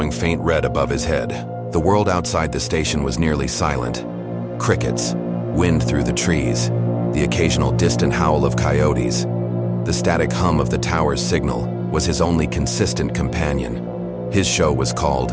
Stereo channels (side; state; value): both; identical; correlation 1.00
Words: faint red above his head. The world outside the station was nearly silent. Crickets, wind through the trees, the occasional distant howl of coyotes. The static hum of the tower's signal was his only consistent companion. His show was